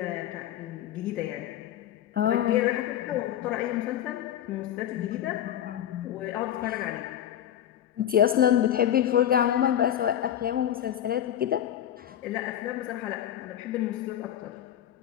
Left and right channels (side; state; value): right; quieter; 11.0 dB